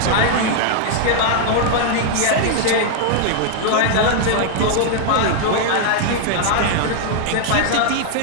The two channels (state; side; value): different; both; correlation 0.00